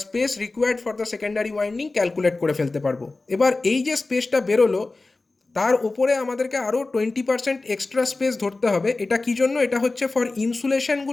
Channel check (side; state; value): right; quieter; 3.4 dB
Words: space required for the secondary winding calculate করে ফেলতে পারবো। এবার এই যে স্পেসটা বেরোলো তার উপরে আমাদেরকে আরও 20% এক্সট্রা স্পেস ধরতে হবে। এটা কী জন্য? এটা হচ্ছে ফর